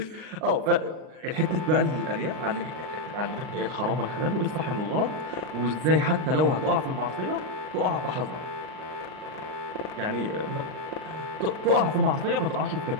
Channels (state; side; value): late; left; 39 ms